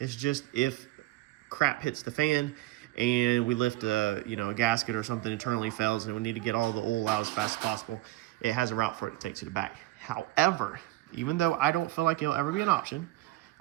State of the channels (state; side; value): quieter; left; 18.3 dB